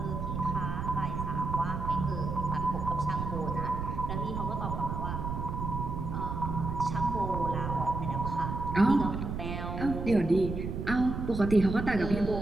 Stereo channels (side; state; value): right; noise; rumble, 4 dB below the sound